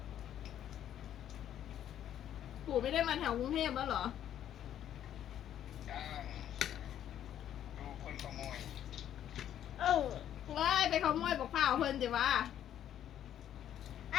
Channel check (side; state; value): right; quieter; 10.7 dB